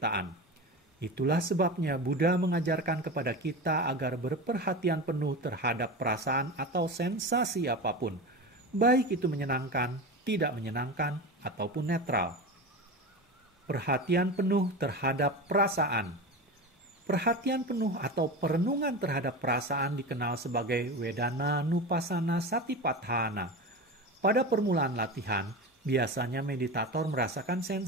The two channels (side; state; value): both; normal; correlation 0.26